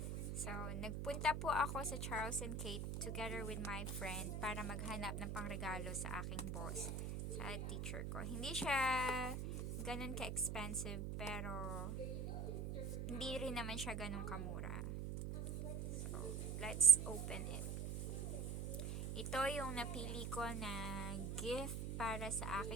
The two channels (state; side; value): noise; right; hum, 3 dB below the sound